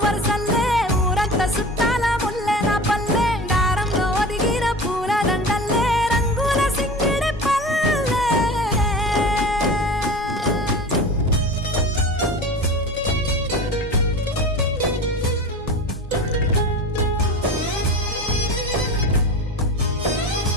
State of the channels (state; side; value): normal; both; correlation 0.34